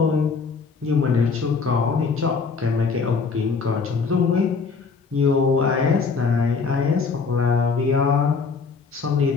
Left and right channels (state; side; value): quieter; right; 5.0 dB